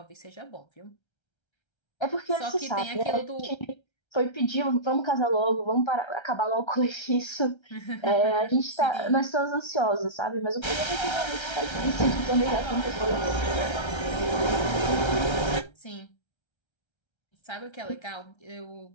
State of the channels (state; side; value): late; right; 1.3 ms